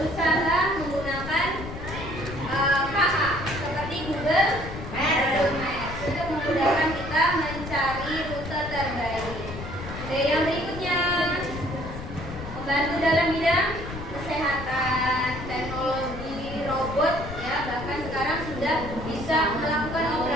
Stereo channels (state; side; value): noise; left; rumble, 9 dB below the sound